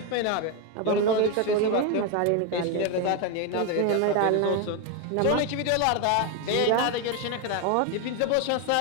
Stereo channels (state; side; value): different; both; correlation 0.02